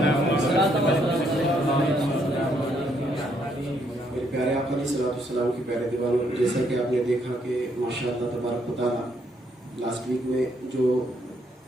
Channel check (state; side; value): normal; both; correlation 0.72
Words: मेरे प्यारे आका अलैहिस्सलाम के प्यारे दीवानों, जैसा कि आपने देखा कि माशाअल्लाह तबारक व तआला लास्ट वीक में जो